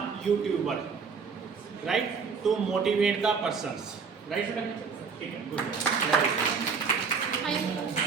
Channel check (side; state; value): left; quieter; 5.5 dB